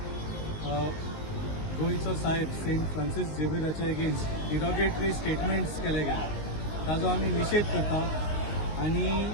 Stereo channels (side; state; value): right; late; 19 ms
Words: गोंयचो साहेब सेंट फ्रांसीस झेवियराचे अगेन्स्ट डिरोगेटरी स्टेटमेंट्स केले गेले ताजो आमी निषेध करता आनी